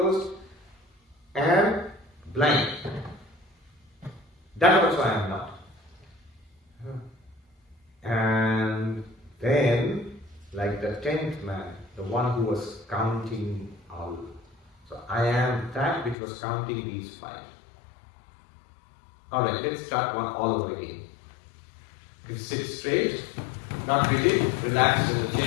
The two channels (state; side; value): drops out; right; at 16.2 s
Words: and blank. That also I am not. And then, like the 10th man, the one who was counting out. So I am that which was counting these 5. Alright, let's start one all over again. You sit straight, not rigid, relaxed in the